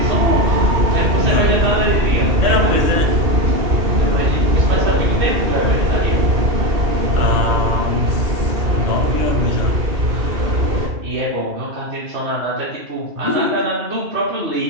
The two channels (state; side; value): late; left; 2.7 ms